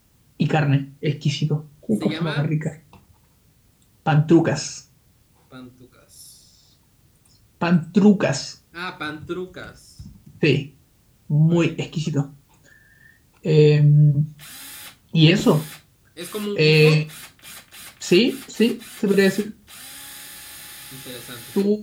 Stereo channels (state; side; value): identical; both; correlation 1.00